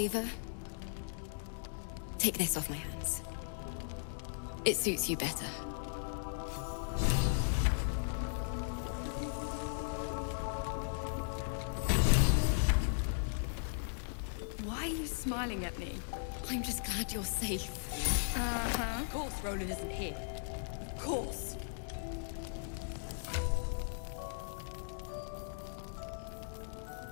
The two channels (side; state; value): right; silent; 53 dB below the other